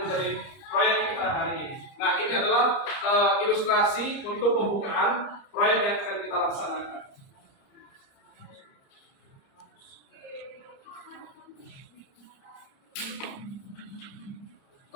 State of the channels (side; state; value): right; late; 30 ms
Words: menjadi proyek kita hari ini. Nah, ini adalah ilustrasi untuk pembukaan proyek yang akan kita laksanakan.